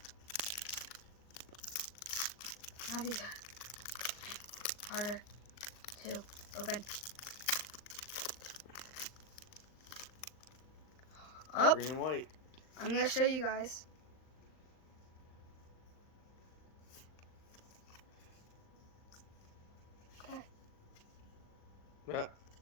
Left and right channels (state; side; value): late; right; 39 ms